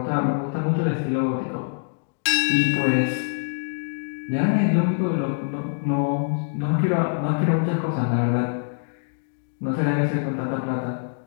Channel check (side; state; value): right; silent; digital silence